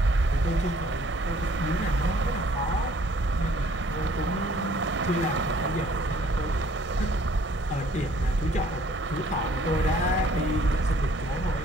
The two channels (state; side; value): normal; both; correlation 0.59